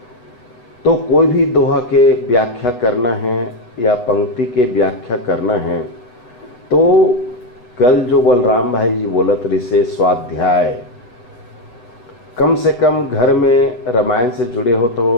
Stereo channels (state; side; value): late; right; 8.1 ms